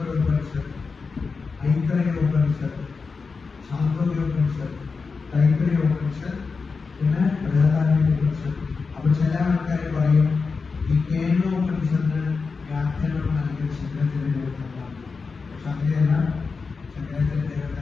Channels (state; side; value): quieter; right; 4.7 dB